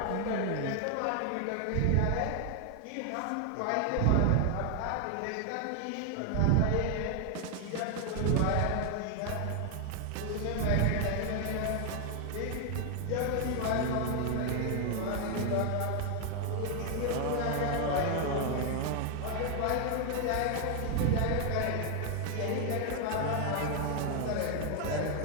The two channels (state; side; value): different; both; correlation 0.00